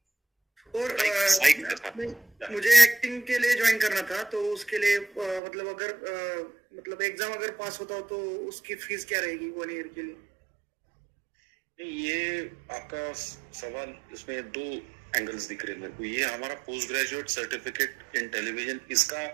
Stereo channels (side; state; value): left; drops out; at 5.4 s